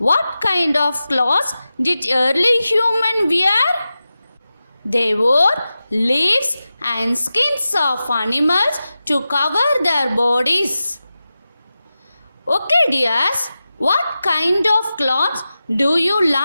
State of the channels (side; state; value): both; inverted; correlation -0.93